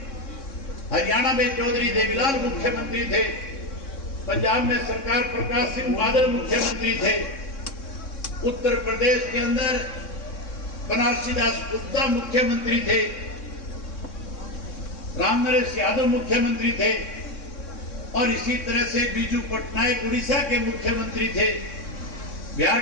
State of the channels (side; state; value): right; late; 3.6 ms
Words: हरियाणा में चौधरी देवीलाल मुख्यमंत्री थे, पंजाब में सरकार प्रकाश सिंह बादल मुख्यमंत्री थे, उत्तर प्रदेश के अंदर बनारसी दास गुप्ता मुख्यमंत्री थे, रामनरेश यादव मुख्यमंत्री थे और इसी तरह से बीजू पटनायक उड़ीसा के मुख्यमंत्री थे, बिहार